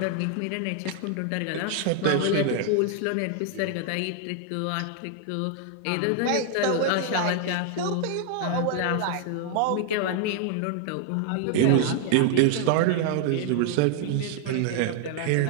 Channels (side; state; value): both; different; correlation 0.00